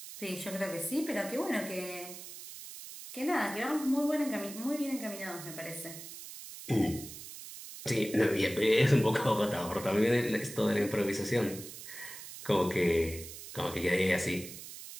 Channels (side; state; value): right; noise; hiss, 12 dB below the sound